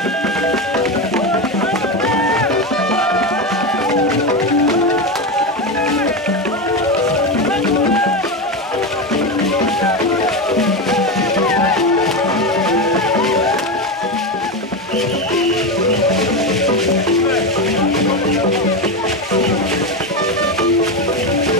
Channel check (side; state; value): both; normal; correlation 0.15